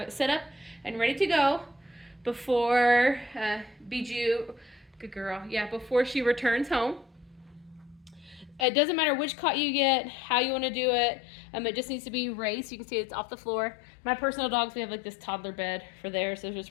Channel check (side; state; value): right; drops out; at 8.7 s